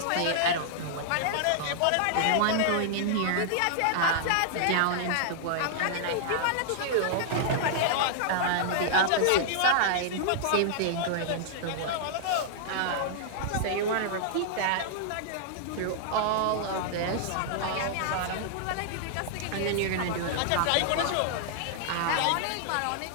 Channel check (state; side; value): different; both; correlation -0.01